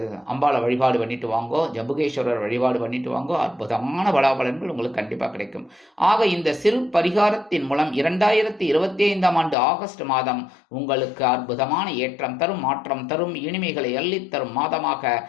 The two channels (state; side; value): drops out; right; at 9.6 s